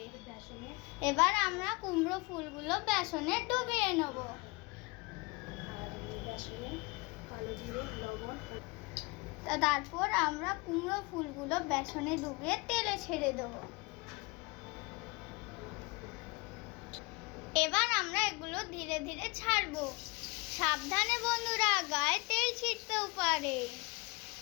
এবার আমরা কুমড়ো ফুলগুলো বেসনে ডুবিয়ে নেব। তারপর আমরা কুমড়ো ফুলগুলো বেসনে ডুবিয়ে তেলে ছেড়ে দেবো। এবার আমরা এগুলো ধীরে ধীরে ছাড়বো। সাবধানে বন্ধুরা, গায়ে তেল ছিটতেও পারে।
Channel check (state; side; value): quieter; right; 26.4 dB